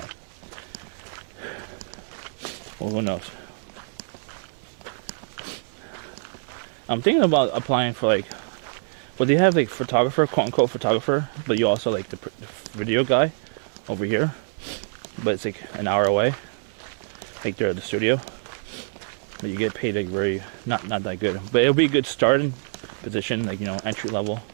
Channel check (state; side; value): silent; left; 61 dB below the other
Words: Well, who knows? I'm thinking about applying for like, well, they have like photographer, quote unquote photographer, but you also like the video guy over here. But it's like an hour away. Like they're at the studio. But you get paid like very, not that good. But it'll be a good starting position, like, entry level.